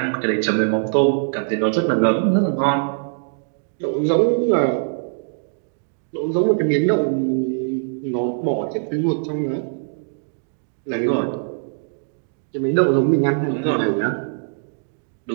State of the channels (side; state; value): left; silent; digital silence